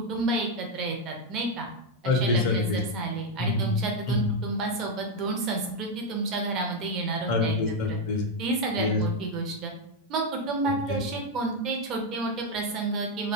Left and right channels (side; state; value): both; normal; correlation 0.04